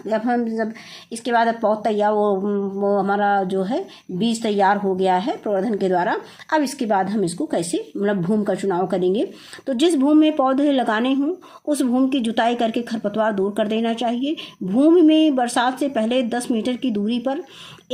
अब हम जब इसके बाद पौध तैयार वो हमारा जो है बीज तैयार हो गया है प्रवर्धन के द्वारा। अब इसके बाद हम इसको कैसे मतलब भूमि का चुनाव करेंगे। तो जिस भूमि में पौधे लगाने हों उस भूमि की जुताई करके खरपतवार दूर कर देना चाहिए। भूमि में बरसात से पहले 10 मीटर की दूरी पर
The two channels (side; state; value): both; identical; correlation 1.00